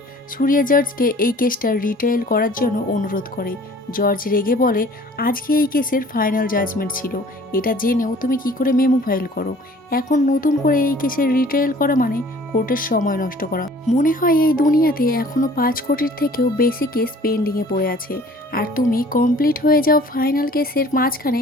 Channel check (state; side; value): normal; both; correlation 0.51